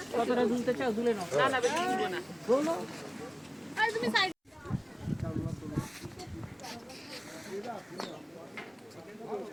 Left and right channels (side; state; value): both; identical; correlation 1.00